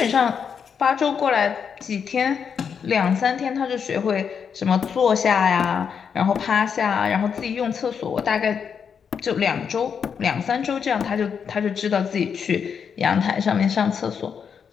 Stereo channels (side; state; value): right; quieter; 6.9 dB